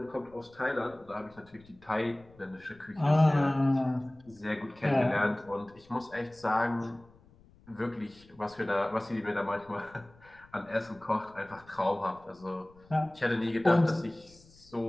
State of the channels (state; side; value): noise; left; rumble, 26 dB below the sound